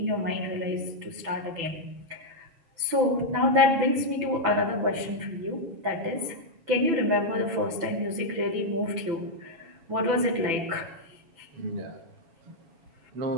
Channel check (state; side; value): late; left; 6.1 ms